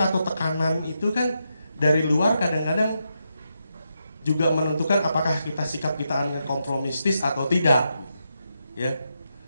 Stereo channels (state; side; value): inverted; both; correlation -0.83